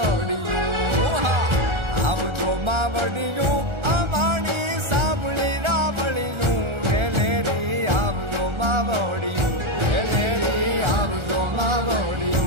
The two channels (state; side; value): late; left; 1.4 ms